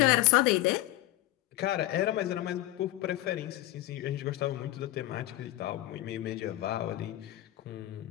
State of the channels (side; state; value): right; quieter; 16.4 dB